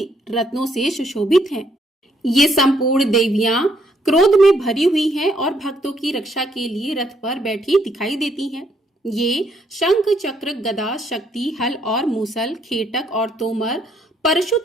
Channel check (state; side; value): normal; both; correlation 0.71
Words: रत्नों से सुशोभित हैं। ये संपूर्ण देवियां क्रोध में भरी हुई हैं और भक्तों की रक्षा के लिए रथ पर बैठी दिखाई देती हैं। ये शंख, चक्र, गदा, शक्ति, हल और मूसल, खेटक और तोमर, परशु